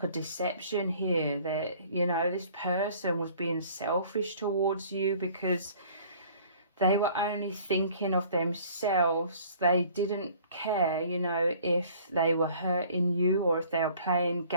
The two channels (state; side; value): inverted; both; correlation -0.53